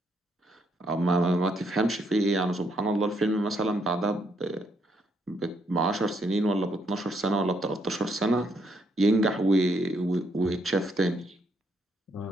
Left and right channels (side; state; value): both; normal; correlation 0.74